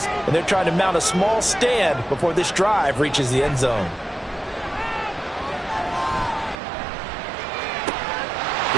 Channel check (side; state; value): left; drops out; at 6.6 s